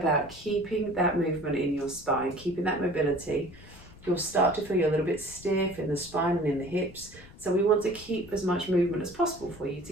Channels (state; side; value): noise; left; rumble, 20 dB below the sound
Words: keeping that movement in your spine, keeping that mobility. You'll start to feel a little bit stiff in the spine and in the hips. So we want to keep as much movement as possible for you